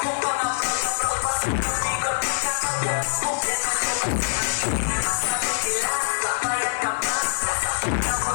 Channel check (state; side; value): silent; right; 63 dB below the other